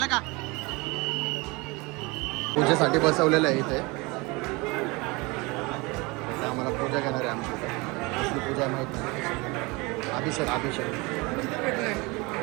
का? पूजेसाठी बसवलेलं आहे इथे. आम्हाला पूजा घेणार आहे आमची इथे. कसली पूजा माहीत नाही. अभिषेक अभिषेक.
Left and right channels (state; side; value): quieter; left; 25.5 dB